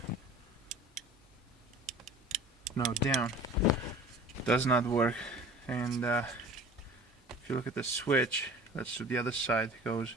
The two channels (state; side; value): normal; both; correlation 0.42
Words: No, down. Does not work. And if you look at the switch, let's do the other side. It goes